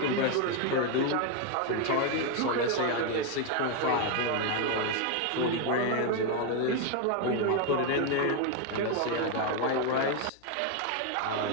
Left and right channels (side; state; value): both; different; correlation 0.01